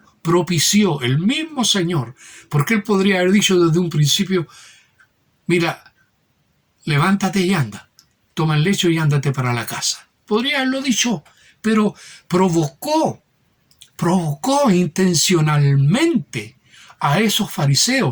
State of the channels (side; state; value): both; identical; correlation 1.00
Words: propició, el mismo Señor, porque Él podría haber dicho desde un principio, mira, levántate y anda, toma el lecho y ándate para la casa. Podría haberlo dicho, pero provocó intencionalmente a esos